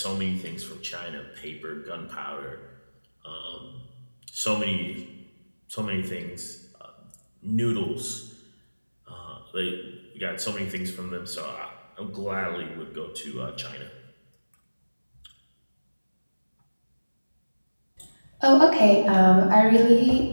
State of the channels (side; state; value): both; inverted; correlation -1.00